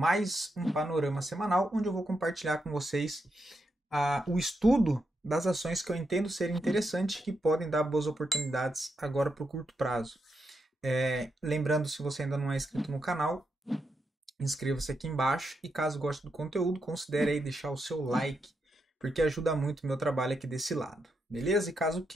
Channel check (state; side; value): normal; both; correlation 0.83